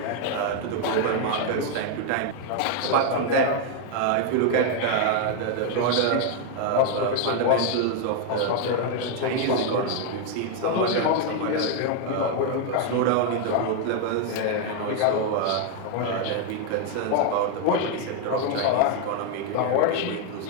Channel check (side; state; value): both; different; correlation 0.00